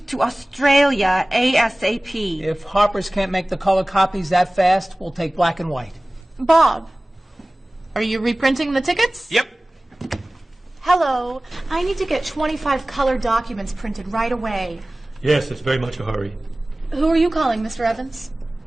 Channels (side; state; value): both; normal; correlation 0.98